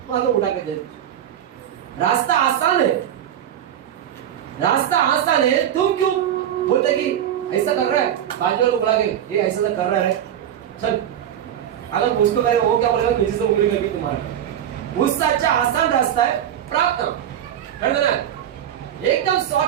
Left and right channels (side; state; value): left; quieter; 10.3 dB